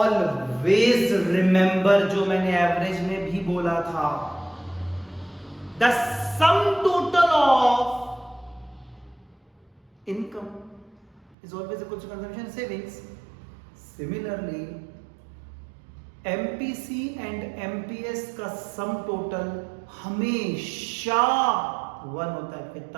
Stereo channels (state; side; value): drops out; left; at 11.4 s